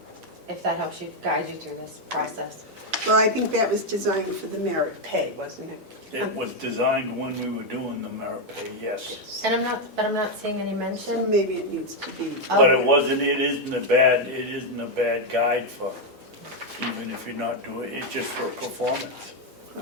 if that helps you, guide you through this process. Well, I think that was designed for the merit pay, wasn't it? It was designed when we were doing the merit pay, yes. And I'm not seeing any So mention. maybe it needs to be. But it isn't a bad guide for, even if you're not doing, it's just for performance.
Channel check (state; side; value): normal; both; correlation 0.02